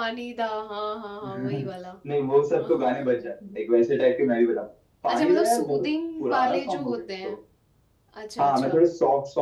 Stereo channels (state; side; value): identical; both; correlation 1.00